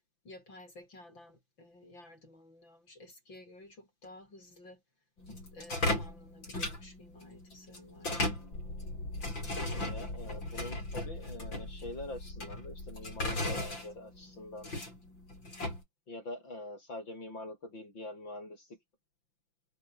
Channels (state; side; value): late; right; 5.9 ms